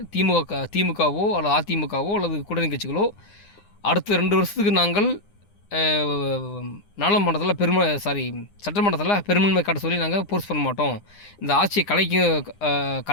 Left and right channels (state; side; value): late; right; 9.8 ms